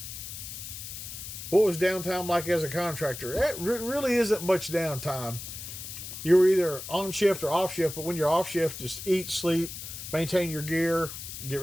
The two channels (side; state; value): left; noise; hiss, 9 dB below the sound